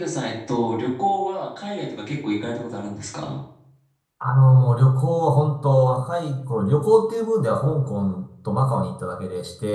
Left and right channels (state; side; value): identical; both; correlation 1.00